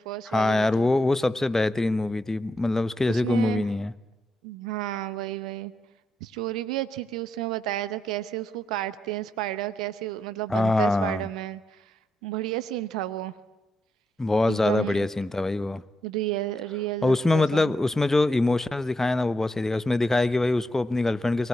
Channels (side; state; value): both; normal; correlation 0.81